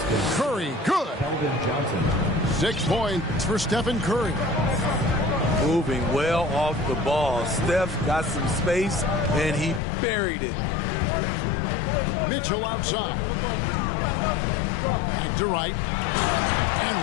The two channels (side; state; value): right; drops out; at 9.8 s